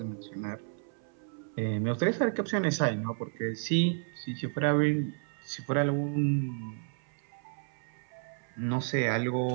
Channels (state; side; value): silent; left; 57 dB below the other